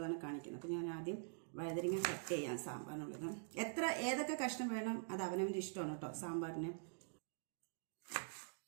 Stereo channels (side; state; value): left; silent; digital silence